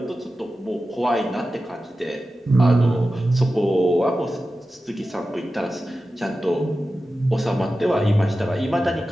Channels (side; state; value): both; normal; correlation 0.93